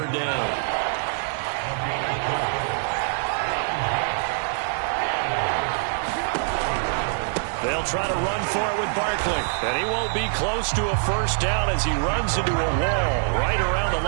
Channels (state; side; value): silent; left; digital silence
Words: down. They'll try to run for it with Barkley. And he won't be close to a 1st down as he runs into a wall right around the